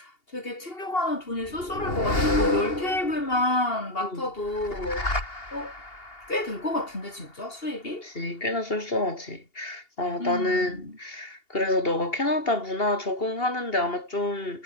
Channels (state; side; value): late; right; 2.8 ms